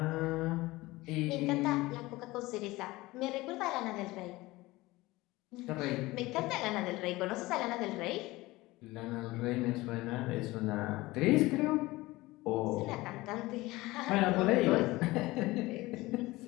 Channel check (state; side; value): quieter; right; 19.9 dB